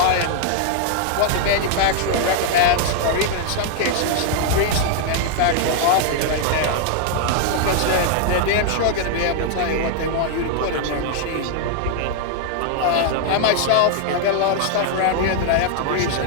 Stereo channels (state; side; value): different; both; correlation 0.00